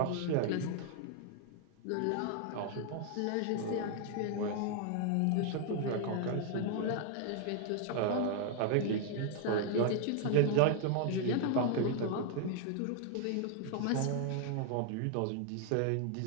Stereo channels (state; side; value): different; both; correlation 0.00